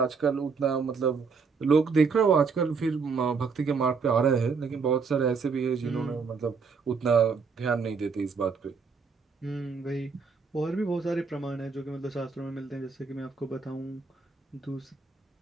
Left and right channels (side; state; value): left; quieter; 5.2 dB